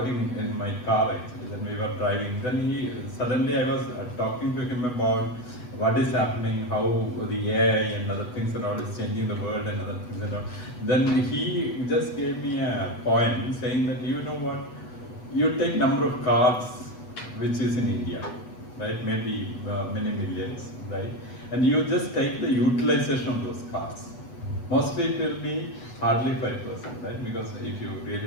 in my car actually, then we were driving. Then suddenly I was talking to him about what is happening, how the AI and other things and all is changing the world and other things and all. Then he just gave me a point saying that, you know what, you take number of cars which is in India, right? Maybe many millions, right? And you just take the utilization of those cars. Mostly it will be hardly 5%, right? Because if you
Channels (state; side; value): late; right; 8.1 ms